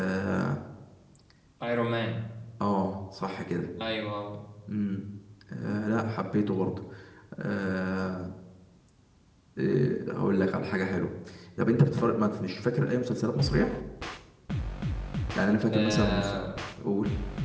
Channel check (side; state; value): both; identical; correlation 1.00